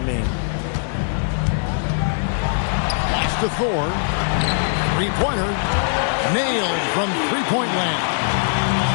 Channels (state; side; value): silent; right; digital silence